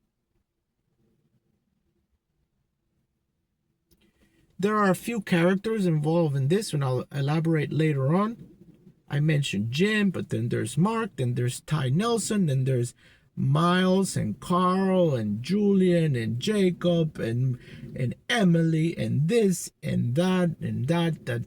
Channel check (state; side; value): identical; both; correlation 1.00